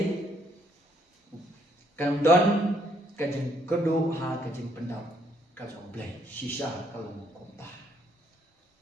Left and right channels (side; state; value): both; normal; correlation 0.69